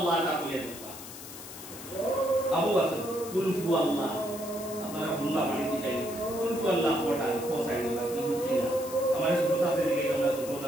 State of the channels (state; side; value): noise; left; hiss, 13 dB below the sound